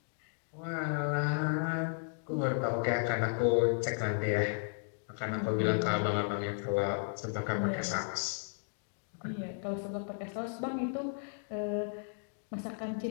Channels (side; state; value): right; silent; digital silence